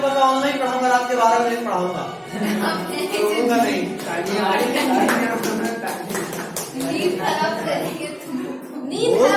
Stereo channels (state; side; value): identical; both; correlation 1.00